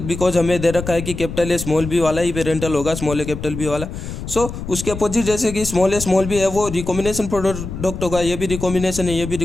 हमें दे रखा है कि कैपिटल ए स्मॉल बी वाला ही पेरेंटल होगा, स्मॉल ए कैपिटल बी वाला। सो उसके अपोजिट जैसे कि स्मॉल ए स्मॉल बी है वो रिकॉम्बिनेशन प्रोडक्ट होगा, ये भी रिकॉम्बिनेशन है, ये भी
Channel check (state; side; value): noise; left; rumble, 8 dB below the sound